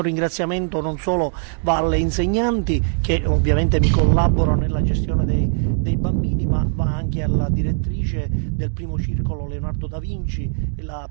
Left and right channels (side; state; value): left; silent; digital silence